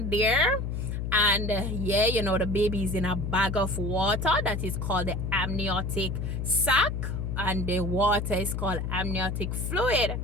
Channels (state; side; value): noise; left; hum, 3 dB below the sound